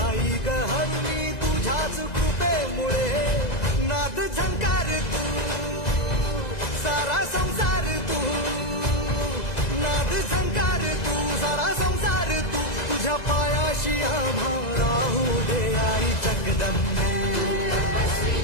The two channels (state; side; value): late; right; 2.0 ms